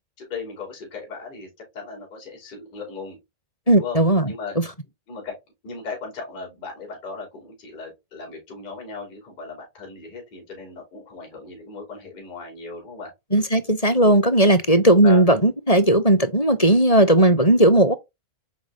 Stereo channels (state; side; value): late; right; 1.7 ms